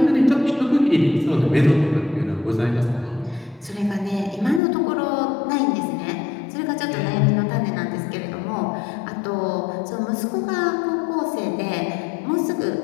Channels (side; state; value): right; drops out; at 4.6 s